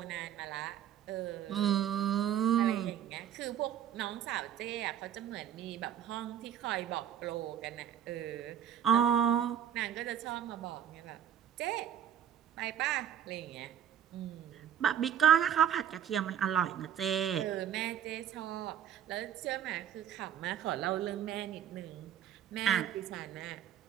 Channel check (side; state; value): left; quieter; 9.7 dB